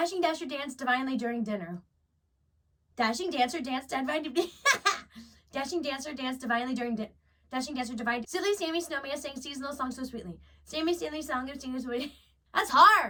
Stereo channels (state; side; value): identical; both; correlation 1.00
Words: Dasher danced divinely during dinner. Dashing Dancer danced divinely. Dashing Dancer danced divinely during dinner. Dashing Dancer divinely. Silly Sammy Snowman sang seasonal songs so sweetly. Sammy Stanley song of singers sweetly. That's